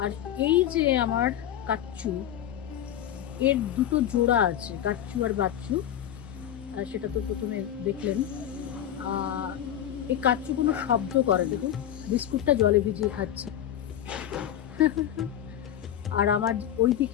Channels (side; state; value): right; quieter; 11.0 dB